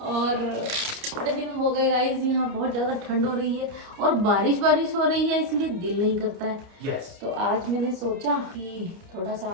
और बड़े दिन हो गए गाइस। यहाँ बहुत ज्यादा ठंड हो रही है और बारिश हो रही है, इसलिए दिल नहीं करता है। Yes. तो आज मैंने सोचा कि थोड़ा सा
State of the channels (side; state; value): left; late; 29 ms